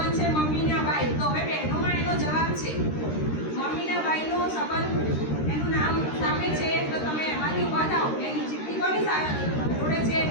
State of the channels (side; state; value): right; late; 13 ms